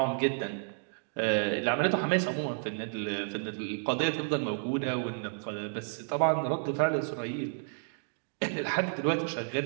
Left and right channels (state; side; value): silent; left; 57 dB below the other